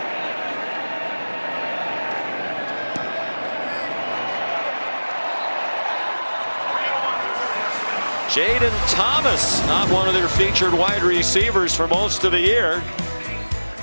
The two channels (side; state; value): both; inverted; correlation -1.00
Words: Jaden Thomas, not one of their featured wide receivers for most of the year.